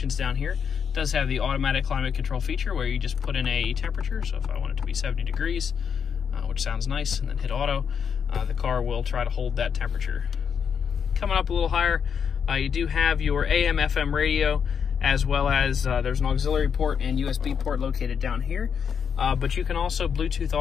down here. It does have the automatic climate control feature where you just put in a temperature. So if I want it to be 70 degrees, which sounds nice, and then hit auto, the car will try to hold that temperature. Coming up a little higher, you do have your AM, FM radio, as well as there's an auxiliary port and USB port located down here. But you can also Bluetooth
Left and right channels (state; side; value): quieter; right; 7.1 dB